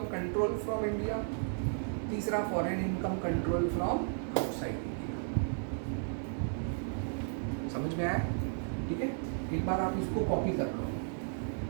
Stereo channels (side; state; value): left; silent; 55 dB below the other